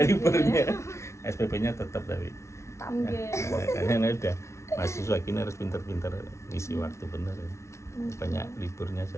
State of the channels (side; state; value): right; late; 0.13 ms